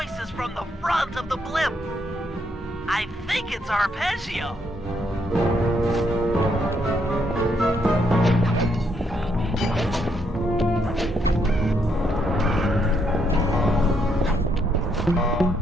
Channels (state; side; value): normal; both; correlation 0.75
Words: from the front of the blimp. I think it's Arpeggio.